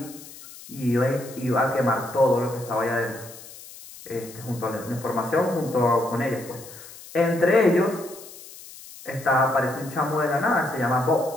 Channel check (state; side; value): noise; left; hiss, 17 dB below the sound